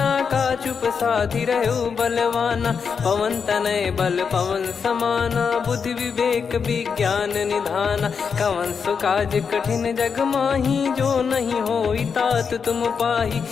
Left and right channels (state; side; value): quieter; right; 6.1 dB